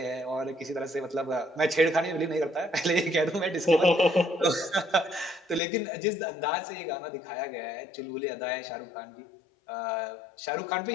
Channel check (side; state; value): right; drops out; at 5.6 s